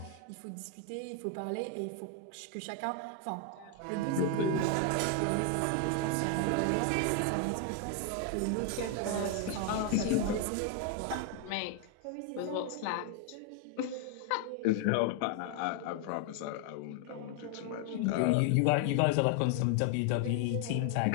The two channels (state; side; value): different; both; correlation 0.00